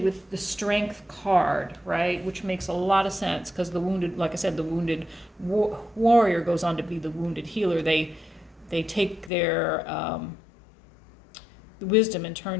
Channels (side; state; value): right; drops out; at 9.3 s